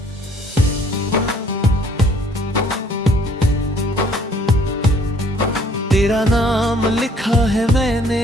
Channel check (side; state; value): both; normal; correlation 0.59